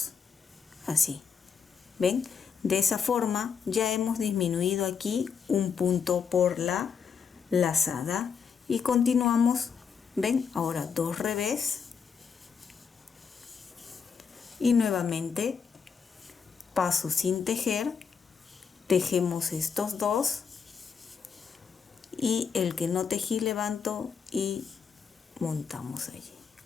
así. ¿Ven? De esa forma ya hemos disminuido aquí un punto por la lazada. Y continuamos, ¿ven? Ahora 2 revés. Y nuevamente paso sin tejer, tejemos estos dos. Y el que no tejí levanto y montamos allí.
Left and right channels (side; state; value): right; quieter; 6.4 dB